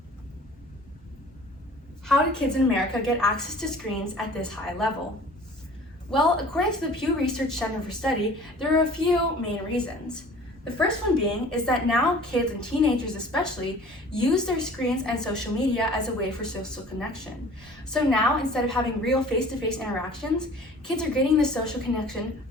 how did kids in America get access to screens at this high level? Well, according to the Pew Research Center for Study, there are a few main reasons. The first one being is that now kids and teenagers especially use their screens and social media as a way for social connection. So now, instead of having real face-to-face interactions, kids are getting the social connection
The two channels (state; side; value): normal; both; correlation 0.48